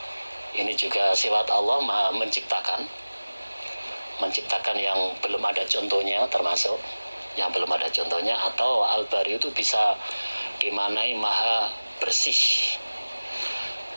ini juga sifat Allah maha menciptakan yang belum ada contohnya, termasuk yang belum ada contohnya. Atau Al-Bari itu bisa dimaknai maha bersih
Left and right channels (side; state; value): both; inverted; correlation -1.00